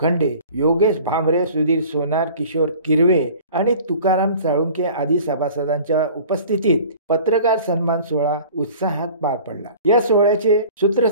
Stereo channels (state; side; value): inverted; both; correlation -0.45